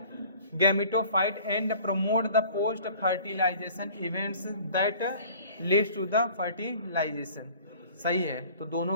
gametophyte and promote the post fertilization events that leads to the fertilization. सही है, तो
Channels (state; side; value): inverted; both; correlation -0.50